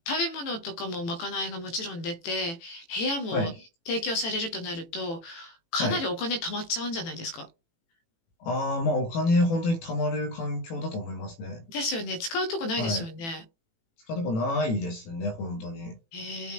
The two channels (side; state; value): right; late; 18 ms